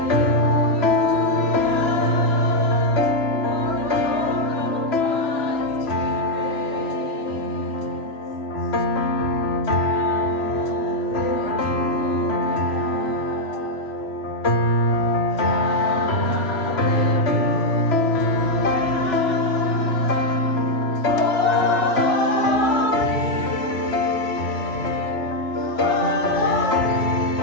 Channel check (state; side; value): late; right; 3.0 ms